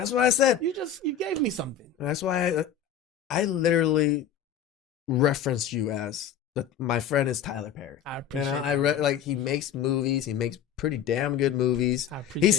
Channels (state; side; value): quieter; right; 8.3 dB